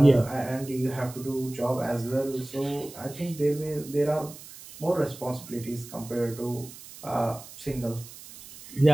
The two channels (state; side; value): noise; right; hiss, 16 dB below the sound